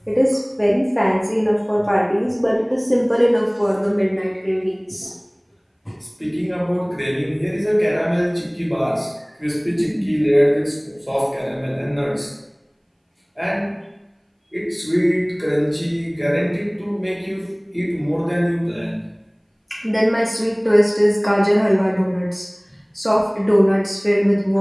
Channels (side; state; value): both; identical; correlation 1.00